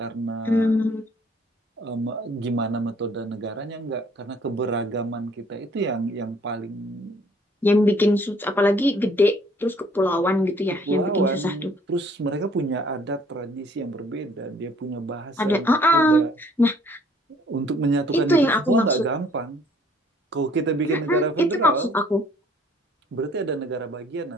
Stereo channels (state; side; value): normal; both; correlation 0.59